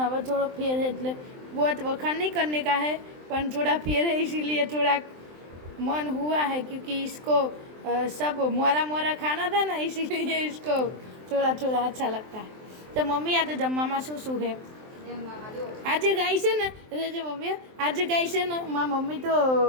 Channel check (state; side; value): late; left; 23 ms